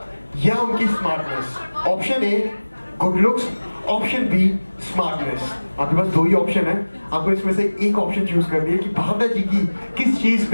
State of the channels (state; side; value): inverted; both; correlation -1.00